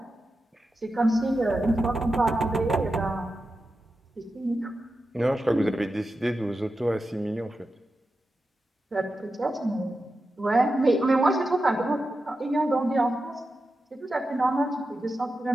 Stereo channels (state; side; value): normal; both; correlation 0.91